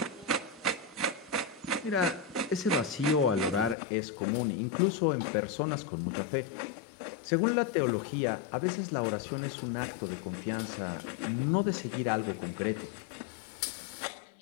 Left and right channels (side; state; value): right; drops out; at 3.8 s